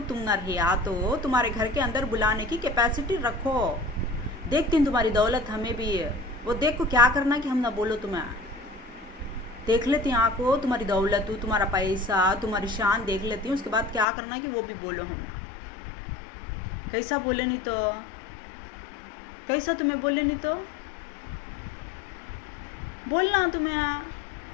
तुम न रहा तो तुम्हारे घर के अंदर बुलाने की कैपेसिटी रखो। देखती हूँ तुम्हारी दौलत हमें भी है, वो देख को क्या करना कि हम ना बोलो, तुम्हें देख लेती हूँ आँखों, तुम्हारी दौलत, तुम्हारा पैसा, तुम्हारी शान देख लेती हूँ, उसके बाद क्या करना कि वो भी बोलो, हम ना कैसा बोले नहीं तो, कैसा तुम्हें बोले नहीं तो बोलना तुम्हें।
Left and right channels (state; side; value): drops out; right; at 14.1 s